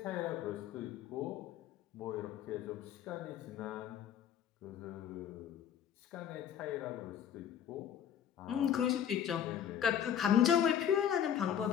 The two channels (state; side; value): quieter; right; 9.3 dB